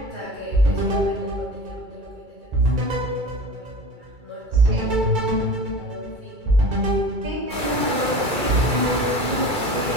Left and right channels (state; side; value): late; left; 2.3 ms